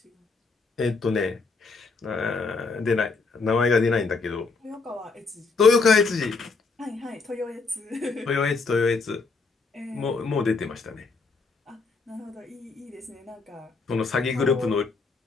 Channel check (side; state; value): right; quieter; 4.3 dB